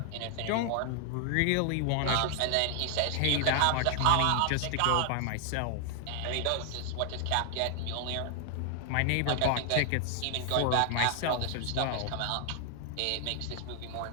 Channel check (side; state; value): both; different; correlation 0.00